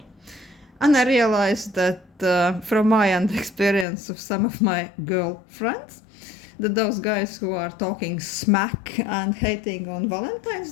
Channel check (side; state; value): right; drops out; at 3.9 s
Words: And I realized that from my own experience of some of my girlfriends, that those guys who are talking smack and hating on Valentine's